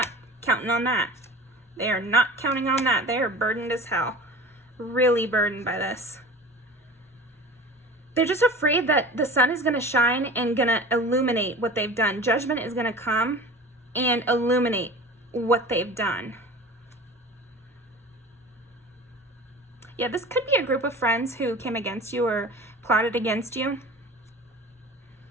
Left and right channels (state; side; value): normal; both; correlation 0.38